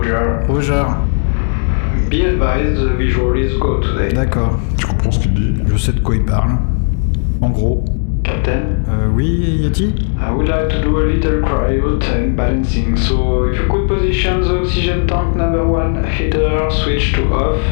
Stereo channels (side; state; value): right; silent; digital silence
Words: Roger. Be advised, the visual is go today. D'accord, Tu comprends ce qu'il dit? je sais de quoi il parle. En gros. Captain, Oui, Yeti? I would like to do a little cryo tank balancing, so if you could position the oxygen tank number 1 heater switch to off